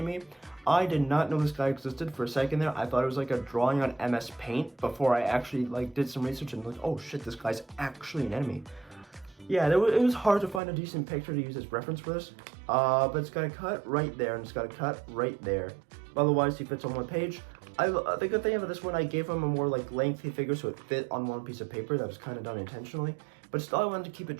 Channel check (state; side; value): drops out; left; at 10.6 s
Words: I did not know this guy existed for a second there. I thought it was like a drawing on MS Paint before I actually like did some research and like, oh shit, this guy's actually an enemy. Yeah, it was hard to find a decent picture to use as reference for this. But it's got a cut right there, and it's got a cut right there. Otherwise, he fits on one page. The good thing about this one, I gave him a more like lengthy figure so it fit on one piece of paper. That was kind of done intentionally. But still, I wanted to keep it